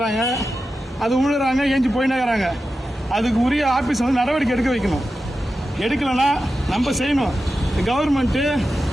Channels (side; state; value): both; normal; correlation 0.92